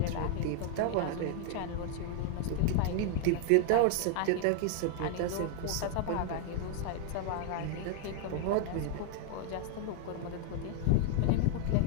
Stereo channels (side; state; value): both; different; correlation 0.00